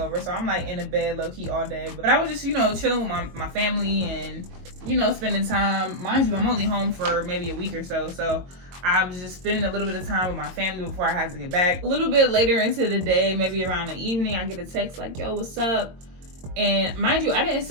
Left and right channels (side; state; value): left; late; 22 ms